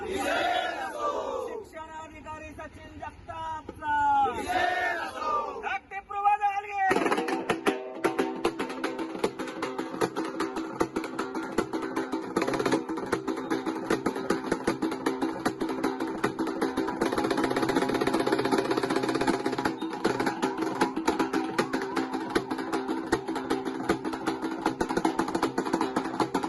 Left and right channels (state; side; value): identical; both; correlation 1.00